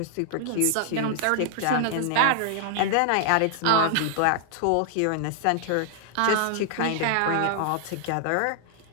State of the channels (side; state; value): both; different; correlation -0.01